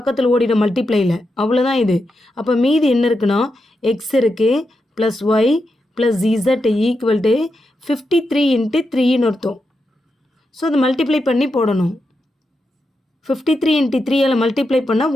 ஓடிடும் மல்டிப்ளையில், அவ்வளோதான் இது. அப்போ மீதி என்ன இருக்குன்னா, எக்ஸ் இருக்குது plus Y plus Z equal to 53 × 3ன்னு அர்த்தம். ஸோ அது மல்டிப்ளை பண்ணி போடணும். 53 × 3ஆல் மல்டிப்ளை பண்ணால்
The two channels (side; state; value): both; normal; correlation 0.86